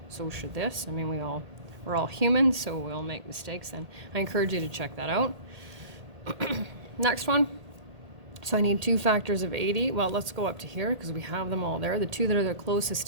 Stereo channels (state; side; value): late; left; 1.8 ms